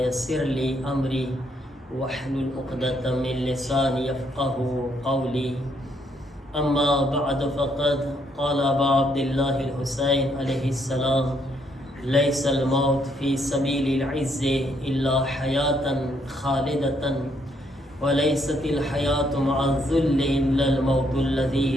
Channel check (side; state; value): both; normal; correlation 0.72